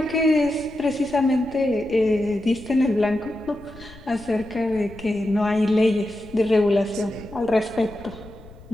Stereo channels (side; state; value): left; noise; rumble, 20 dB below the sound